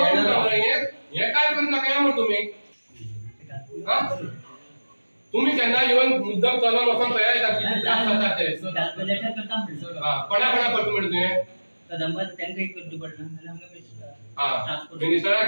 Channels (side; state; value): both; inverted; correlation -1.00